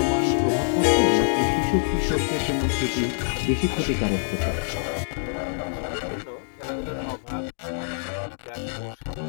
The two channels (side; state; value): right; silent; digital silence